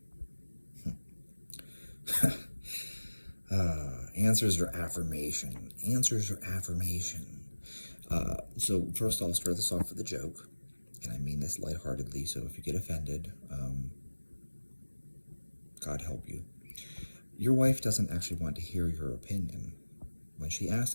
Answers or affirmation? Answers or affirmation? So first I'll start this off with a joke, and I mean this lightheartedly, so if you get offended, God help you. Your wife doesn't actually want to hear your opinion. When she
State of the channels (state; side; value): inverted; both; correlation -1.00